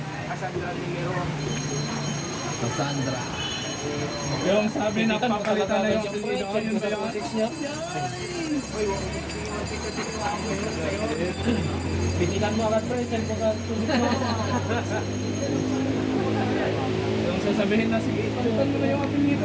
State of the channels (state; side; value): identical; both; correlation 1.00